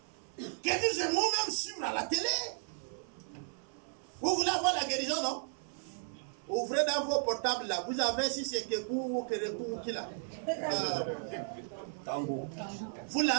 que nous aimons même suivre à la télé. Vous voulez avoir la guérison, non? Ouvrez dans vos portables là. Vous avez si c'est Kekou ou Kerekou ou qui là. Vous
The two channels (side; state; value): left; silent; 55 dB below the other